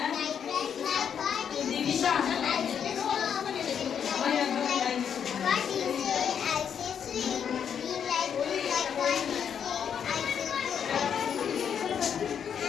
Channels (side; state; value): right; quieter; 7.9 dB